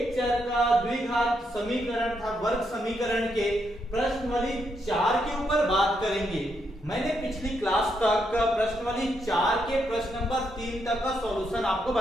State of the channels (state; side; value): normal; both; correlation 0.79